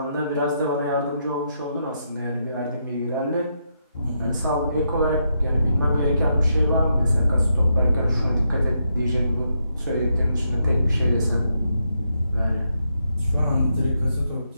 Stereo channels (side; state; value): both; inverted; correlation -0.81